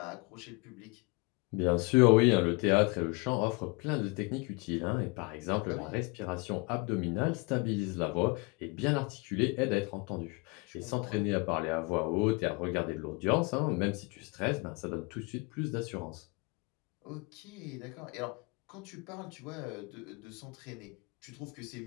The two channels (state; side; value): quieter; right; 28.8 dB